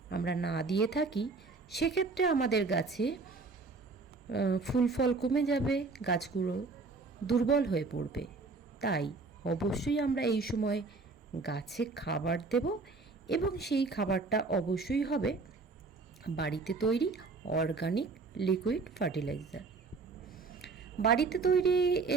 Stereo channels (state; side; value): quieter; left; 4.1 dB